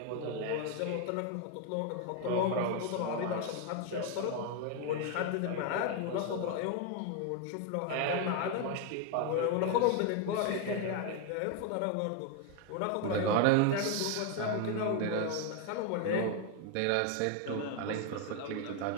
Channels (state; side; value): different; both; correlation 0.01